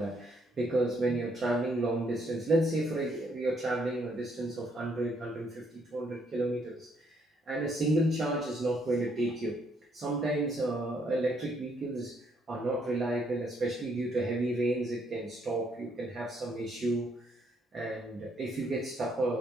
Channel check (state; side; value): normal; both; correlation 0.71